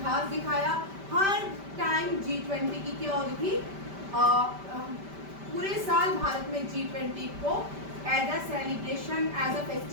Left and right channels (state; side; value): late; left; 5.1 ms